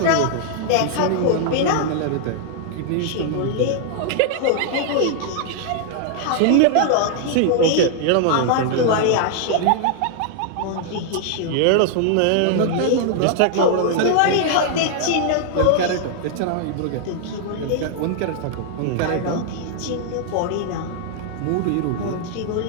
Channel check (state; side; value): different; both; correlation -0.01